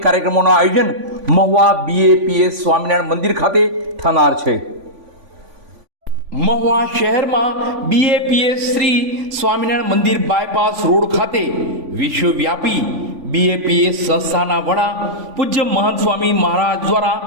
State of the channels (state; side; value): late; left; 3.5 ms